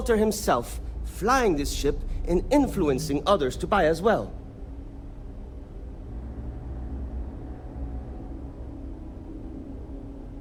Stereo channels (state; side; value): identical; both; correlation 1.00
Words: himself, flying this ship and influencing others to buy as well.